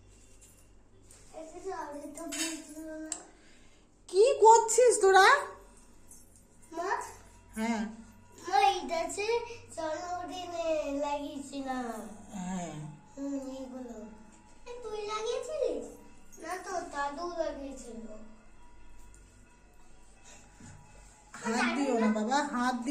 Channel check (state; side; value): identical; both; correlation 1.00